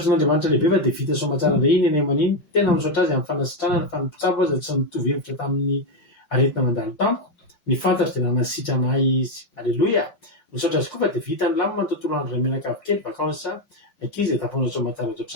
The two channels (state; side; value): late; right; 5.6 ms